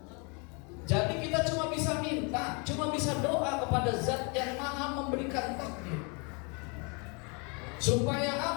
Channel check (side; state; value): right; quieter; 33.1 dB